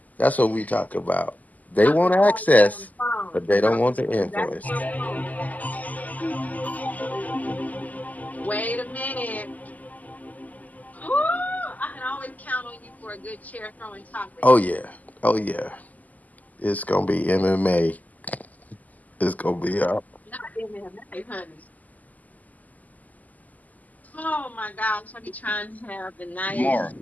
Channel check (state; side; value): late; right; 0.079 ms